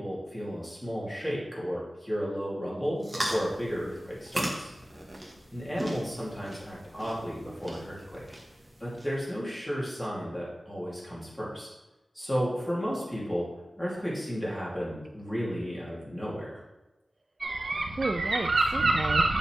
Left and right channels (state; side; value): normal; both; correlation 0.95